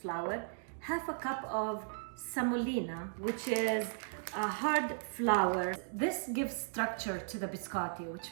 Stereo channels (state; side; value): silent; left; digital silence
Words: half a cup of semolina, which is a hard flour. This gives structure to the biscotti, which